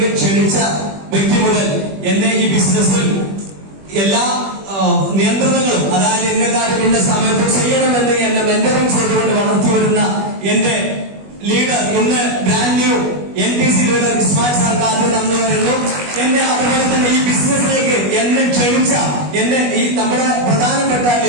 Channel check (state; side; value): late; left; 21 ms